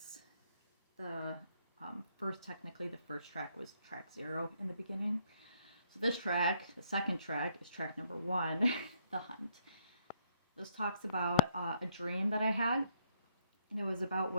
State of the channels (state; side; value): inverted; both; correlation -0.70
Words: the technically the first track was track 0 in the beginning. So this track, the second track, is track number 1, The Hunt. This talks about a dream that I had, and it was about